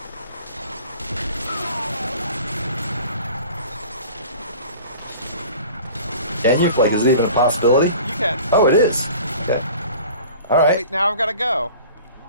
Can you? Like, is it even a possibility? You can. Oh, it is. Okay. All right. Wait, now I've got to go.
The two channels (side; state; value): both; inverted; correlation -0.43